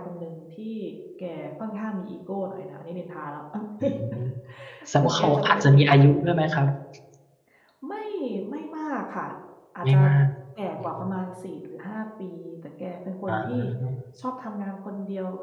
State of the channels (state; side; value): identical; both; correlation 1.00